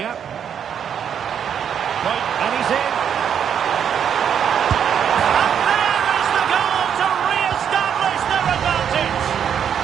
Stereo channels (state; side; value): quieter; left; 8.3 dB